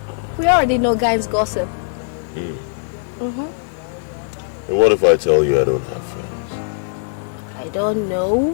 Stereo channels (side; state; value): right; silent; digital silence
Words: We already know guys gossip. And what if I tell you I don't have friends? I don't